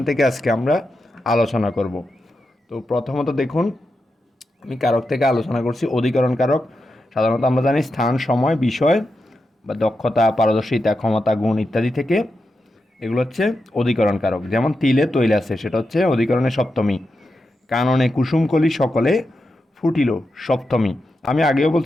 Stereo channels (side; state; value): both; normal; correlation 0.88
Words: থেকে আজকে আমরা আলোচনা করব। তো প্রথমত দেখুন, আমি কারক থেকে আলোচনা করছি অধিকরণ কারক। সাধারণত আমরা জানি স্থান, সময়, বিষয় বা দক্ষতা, পারদর্শিতা, ক্ষমতা, গুণ ইত্যাদি থেকে এগুলো হচ্ছে অধিকরণ কারক। যেমন তিলে তৈল আছে, সেটা হচ্ছে অধিকরণের সপ্তমী। কাননে কুসুমকলি সকলে ফুটিল সপ্তমী। আমি আগেও